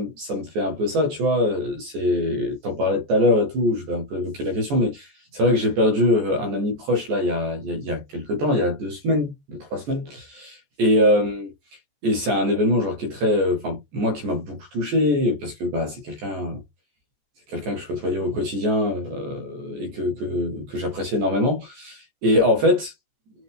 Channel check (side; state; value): left; late; 14 ms